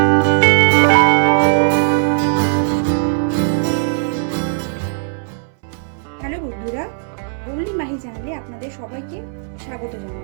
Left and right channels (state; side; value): silent; left; 64 dB below the other